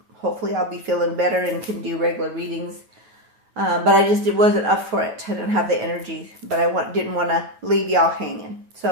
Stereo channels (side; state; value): left; late; 9.3 ms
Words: hopefully I'll be feeling better and can do regular readings. But it wasn't up for it. I didn't have the energy, but I didn't want to leave y'all hanging.